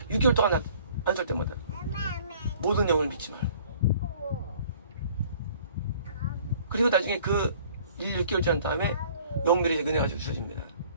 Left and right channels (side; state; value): both; inverted; correlation -0.53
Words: 6개월 동안 안설 때마다 모든 영을 믿지 말고. 그리고 나중에 그 6개월 지난 다음에 영별이 은혜가 주셔집니다.